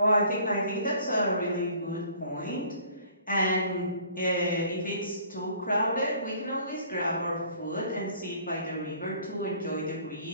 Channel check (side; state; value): both; inverted; correlation -0.53